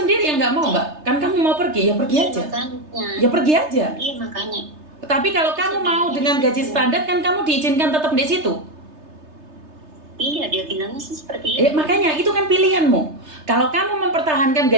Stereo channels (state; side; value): late; left; 3.3 ms